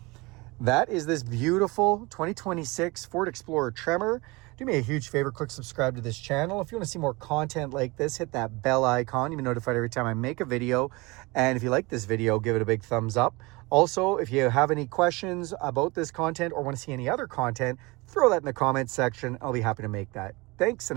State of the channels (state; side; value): quieter; left; 24.4 dB